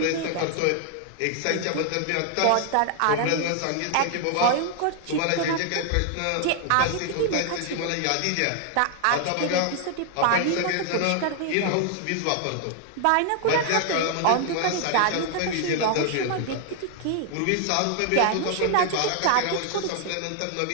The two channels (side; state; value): both; different; correlation 0.00